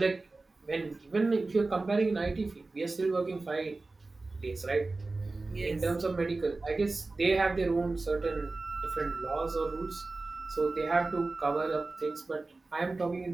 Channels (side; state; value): left; quieter; 3.4 dB